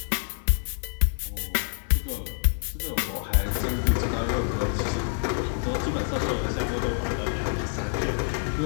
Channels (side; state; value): right; silent; digital silence